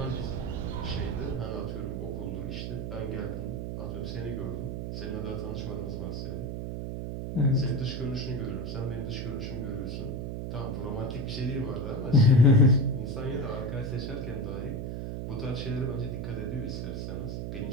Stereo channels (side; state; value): right; noise; hum, 4 dB below the sound